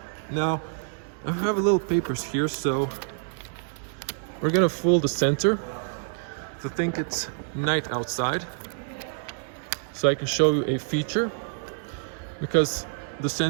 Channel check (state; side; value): silent; left; 60 dB below the other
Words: Now I have a little papers here, so we're gonna fold the sensor to think it's night outside, so I can show you a feature because the